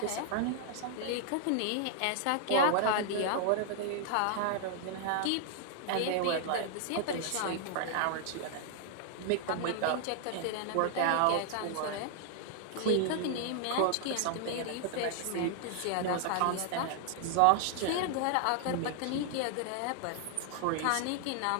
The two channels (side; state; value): both; different; correlation 0.00